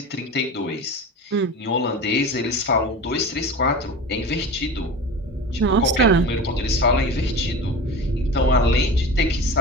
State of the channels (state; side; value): normal; both; correlation 0.31